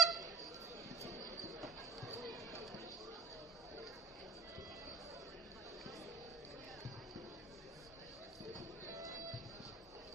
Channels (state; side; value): quieter; left; 4.4 dB